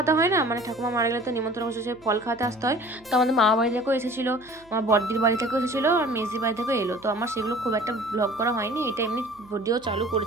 হয় না, ঠাকুমা মারা গেলে তো নিমন্ত্রণ করছে, ফল খাওয়াতে আসতে হয়। তো আমাদের মামা বাড়ি থেকেও এসেছিলো, আমার বড়দির বাড়ি থেকেও এসেছিলো, আর মেজদির বাড়ি থেকেও এলো। তো আমার সেগুলো খুব একটা ব্লগ করা হয়নি, এটা এমনি ভিডিও চালু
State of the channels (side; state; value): right; noise; hum, 27 dB below the sound